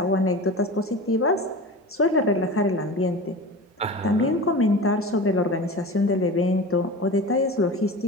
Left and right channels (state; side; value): normal; both; correlation 0.32